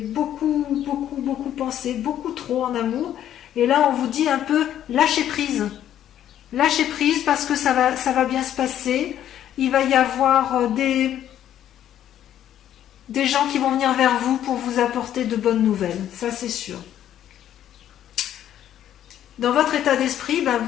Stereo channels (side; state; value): right; quieter; 11.1 dB